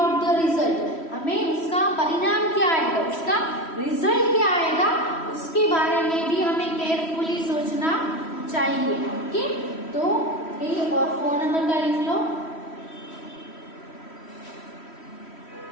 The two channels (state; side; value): late; right; 3.1 ms